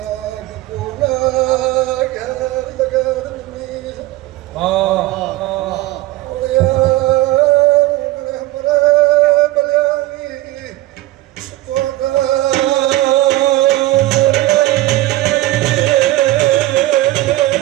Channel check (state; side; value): quieter; left; 17.2 dB